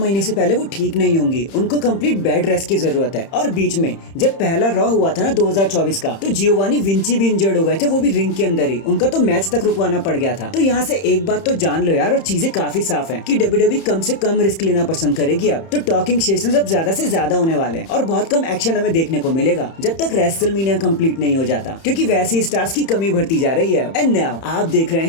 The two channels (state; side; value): late; right; 31 ms